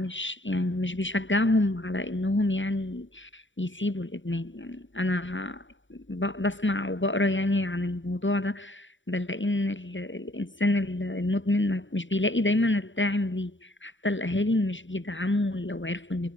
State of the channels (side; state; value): right; late; 0.55 ms